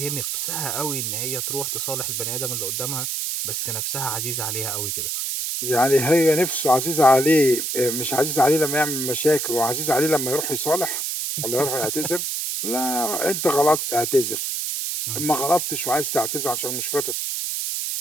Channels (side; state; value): right; noise; hiss, 2 dB below the sound